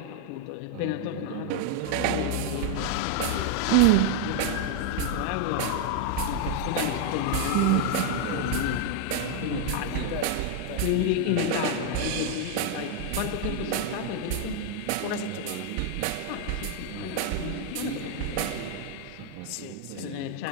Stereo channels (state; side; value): different; both; correlation 0.00